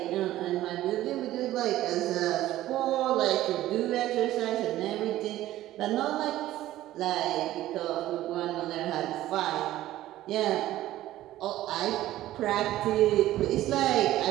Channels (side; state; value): left; quieter; 14.6 dB